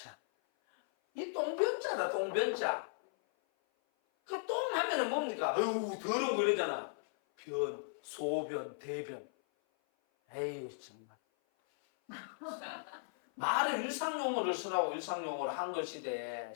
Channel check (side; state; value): right; silent; 53 dB below the other